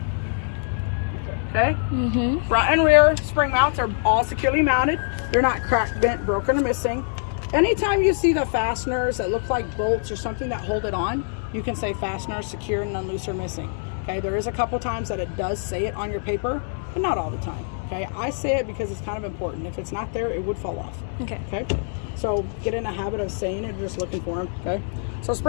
Okay? Front and rear spring mounts are all securely mounted. They're not cracked, bent, broken, or missing. Anytime you see the fasteners that look like bolts or something that hold it on, you can say fastener secure, none loose or missing. Okay, there is a couple times that it does say it on your paper, but not all the time. Okay, I say it because it's kind of important. If it's not there, it would fall off. Okay. Okay, so get in the habit of saying it, just looking for them. Okay, so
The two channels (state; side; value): silent; right; digital silence